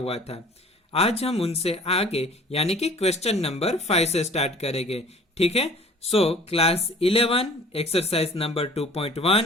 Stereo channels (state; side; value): normal; both; correlation 0.49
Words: था। आज हम उनसे आगे यानी कि क्वेश्चन नंबर 5 से स्टार्ट करेंगे। ठीक है, so class 11 exercise number